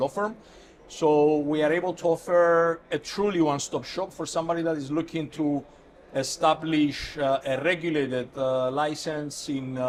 firm. So we are able to offer a truly one-stop shop for somebody that is looking to establish a regulated license in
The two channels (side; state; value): both; identical; correlation 1.00